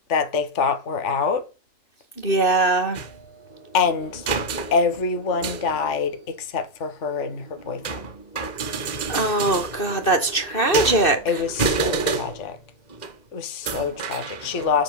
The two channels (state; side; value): late; right; 2.6 ms